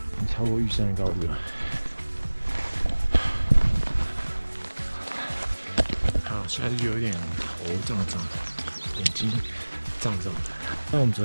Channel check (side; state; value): both; inverted; correlation -1.00